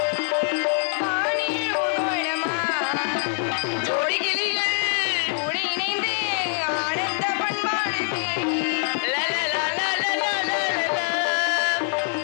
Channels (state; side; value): silent; right; digital silence